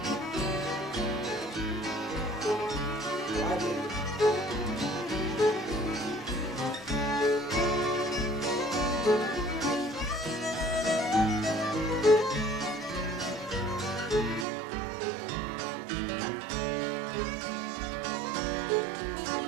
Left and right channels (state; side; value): drops out; left; at 14.5 s